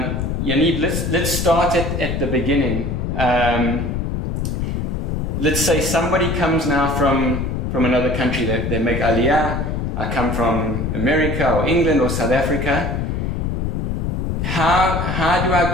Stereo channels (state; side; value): noise; left; rumble, 1 dB below the sound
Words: let's start at the beginning. Let's say somebody comes now from another country, they make Aliyah. I come from America or England or South Africa. How do I